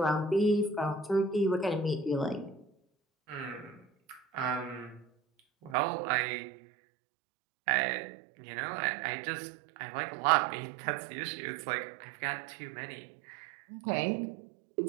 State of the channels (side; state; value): left; drops out; at 5.8 s